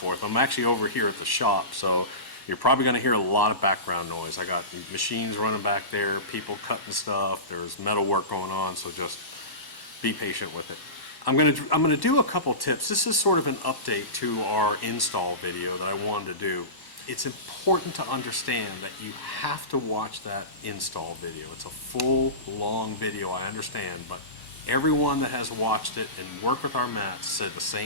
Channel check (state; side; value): late; right; 1.1 ms